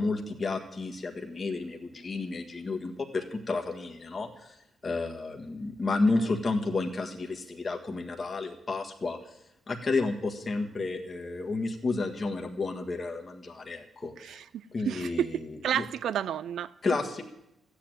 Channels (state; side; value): normal; both; correlation 0.85